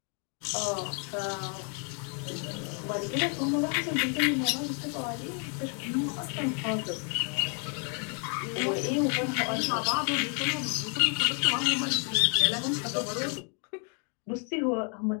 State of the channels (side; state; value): right; quieter; 39.5 dB